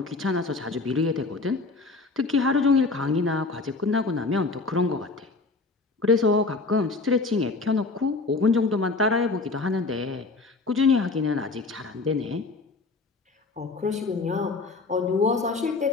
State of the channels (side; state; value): right; quieter; 3.7 dB